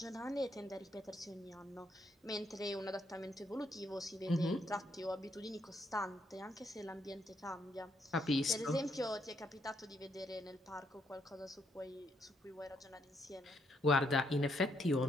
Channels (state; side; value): normal; both; correlation 0.75